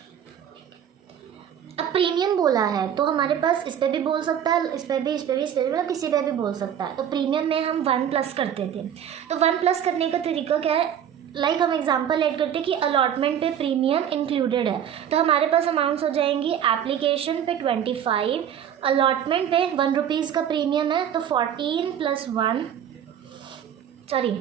अब प्रीमियम बोला है तो हमारे पास इस पे भी बोल सकता है, इस पे भी, मतलब किसी पे भी बोल सकता है। तो प्रीमियम में हम 1 प्लस करते थे, तो 1 प्लस करने का तरीका क्या है, लाइक हम एग्जांपल ऐड करते हैं कि अलॉटमेंट पे प्रीमियम इंक्लूडेड है, तो हमारे पास अमाउंट्स हो जाएंगी एप्लीकेशन पे 25, अलॉटमेंट पे 1 रुपीज़ का प्रीमियम है तो 15 +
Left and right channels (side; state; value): left; quieter; 9.3 dB